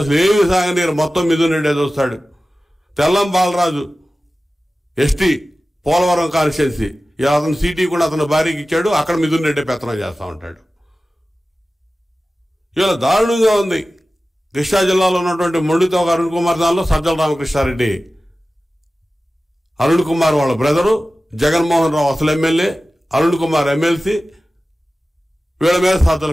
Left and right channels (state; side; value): normal; both; correlation 0.95